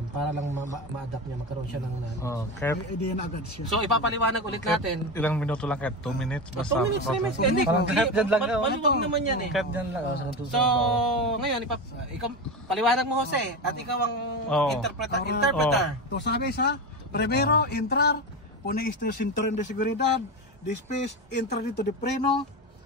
para lang ma-adapt niya, magkaroon siya ng knowledge. Idea na agad siya. So ipapaliwanag ulit natin. Ilang minuto lang kahit 2 minutes basta. 2 minutes, 3 minutes. Hindi, maluwag naman yan eh. Kahit dyan lang. So ngayon, ikaw, paliwanag mo Jose at ikaw ang interpreter. To sabi sa, primero, entrar, pone este cinturón de seguridad, después, entrar dito de freno,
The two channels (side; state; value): both; normal; correlation 0.20